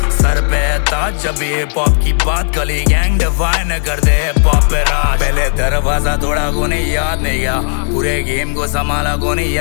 सर पे ताज जब हिप हॉप की बात, गली गैंग डिफाइन कर दे हिप हॉप पे राज। पहले दरवाजा तोड़ा को नहीं याद नहीं गया, पूरे गेम को संभाला को नहीं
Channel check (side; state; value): right; silent; digital silence